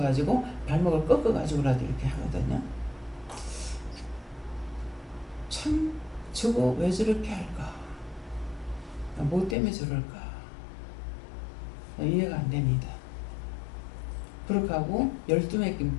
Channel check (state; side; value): drops out; right; at 9.6 s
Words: 발목을 꺾어가지고라도 이렇게 하거든요. 참 저거 왜 저렇게 할까? 뭐 때문에 저럴까? 이해가 안 됩니다. 그렇게 하고 12매 끼